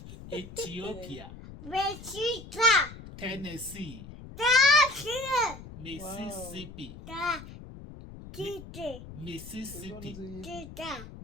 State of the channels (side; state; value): left; noise; rumble, 14 dB below the sound